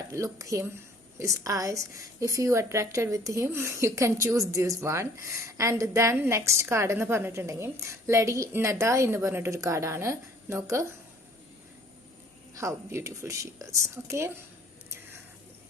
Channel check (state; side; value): normal; both; correlation 0.55